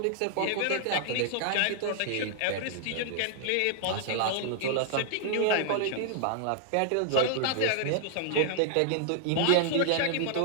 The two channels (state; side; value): different; both; correlation -0.01